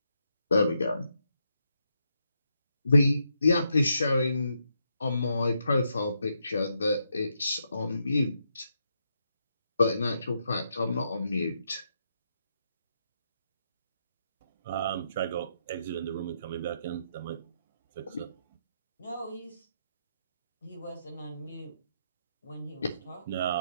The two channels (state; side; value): inverted; both; correlation -0.80